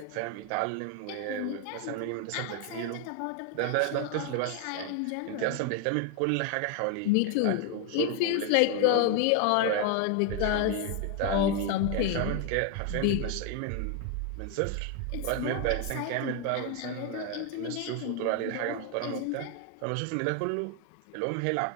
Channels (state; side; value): different; both; correlation 0.01